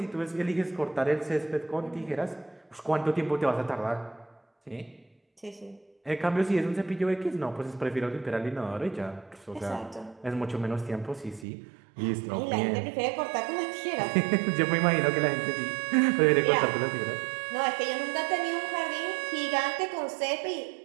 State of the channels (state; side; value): drops out; left; at 11.5 s